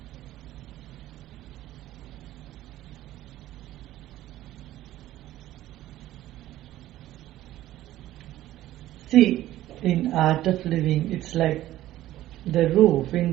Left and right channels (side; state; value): left; quieter; 14.5 dB